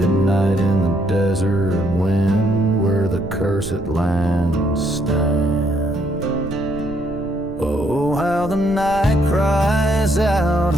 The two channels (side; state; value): right; noise; rumble, 16 dB below the sound